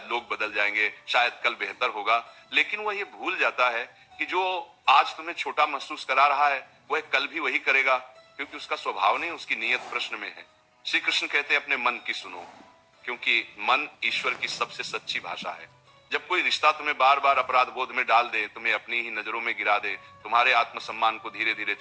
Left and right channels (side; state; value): both; identical; correlation 1.00